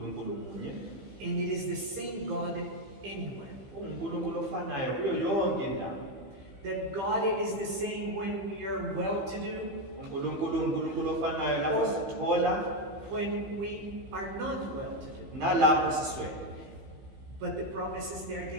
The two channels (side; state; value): left; late; 15 ms